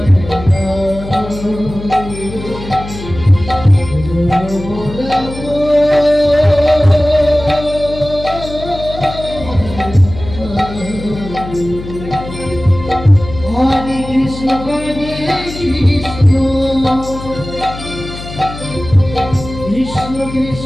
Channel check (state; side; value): noise; left; hum, 11 dB below the sound